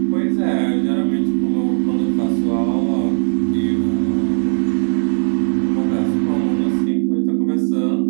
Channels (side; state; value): left; silent; digital silence